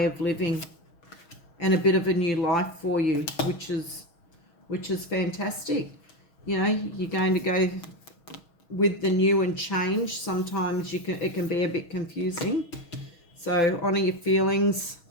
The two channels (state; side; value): late; right; 6.3 ms